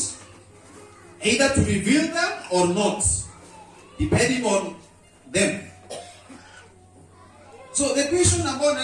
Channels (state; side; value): identical; both; correlation 1.00